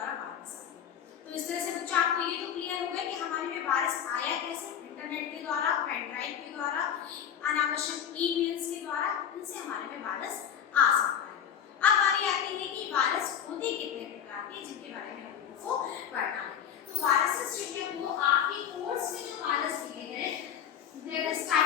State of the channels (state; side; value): quieter; right; 8.9 dB